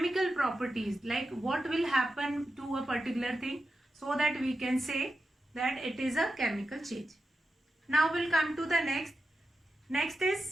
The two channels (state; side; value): normal; both; correlation 0.90